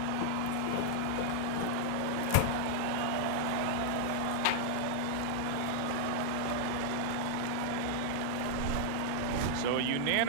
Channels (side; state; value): both; different; correlation 0.00